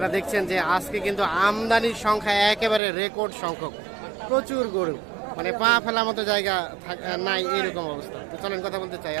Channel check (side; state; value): left; drops out; at 2.8 s